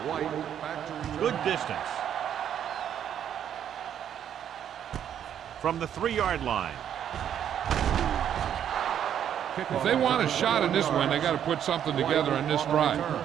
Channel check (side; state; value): left; quieter; 9.5 dB